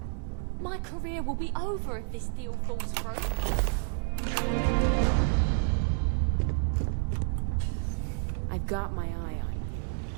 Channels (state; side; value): silent; left; 58 dB below the other